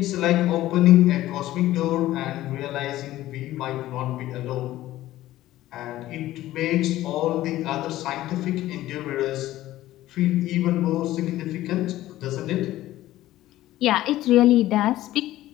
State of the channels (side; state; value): right; quieter; 15.1 dB